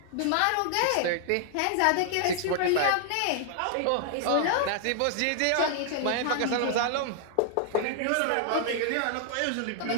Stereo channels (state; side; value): different; both; correlation 0.00